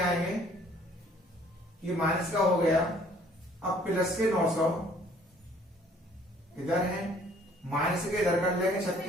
ये माइनस का हो गया। अब प्लस के 900 इधर है, माइनस के इधर कर लेंगे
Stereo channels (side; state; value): both; normal; correlation 0.58